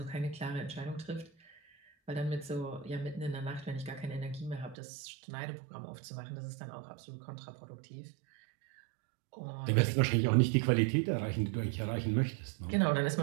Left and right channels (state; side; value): drops out; left; at 4.8 s